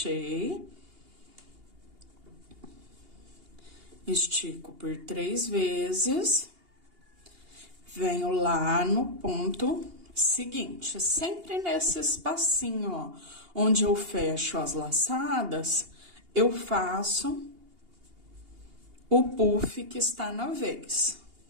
estico por 3 vezes, venho lá no ponto seguinte, sempre nesse espacinho, ó, onde eu fecho as laçadas, eu faço o puff que está na vez.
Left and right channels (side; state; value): left; late; 2.8 ms